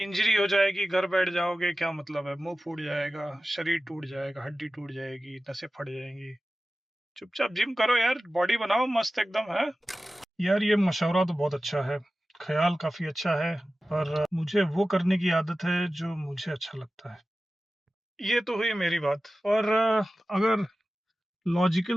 हो जाएगी, घर बैठ जाओगे, क्या मतलब है? मुंह फूट जाएगा, शरीर टूट जाएगा, हड्डी टूट जाएगी, नसें फट जाएंगी। चुपचाप जिम करो यार, बॉडी बनाओ मस्त एकदम है। यार ये मशवरा तो बहुत अच्छा है, ख्याल काफी अच्छा है, पर मुझे वो करने की आदत है जो मुझे अच्छा लगता है। ये तो हुई मेरी बात। और अगर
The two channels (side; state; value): both; normal; correlation 0.95